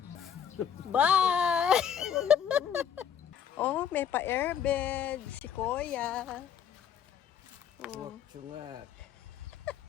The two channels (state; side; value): quieter; right; 8.5 dB